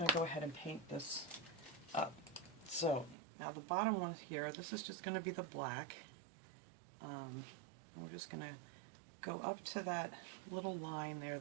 to go ahead and paint this up. So, now the bottom one here, this is just going to be the black. We're just going to go up to that little line there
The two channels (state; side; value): drops out; left; at 3.2 s